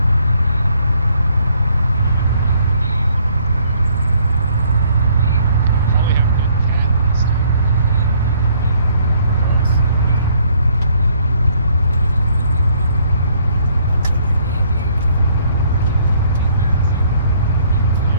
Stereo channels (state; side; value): inverted; both; correlation -0.64